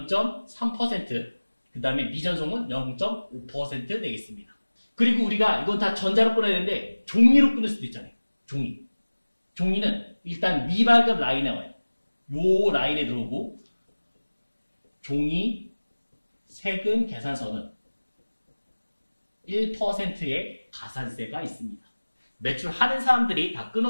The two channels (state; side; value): inverted; both; correlation -1.00